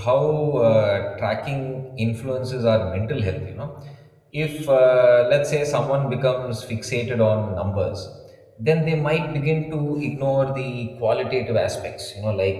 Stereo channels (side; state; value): both; identical; correlation 1.00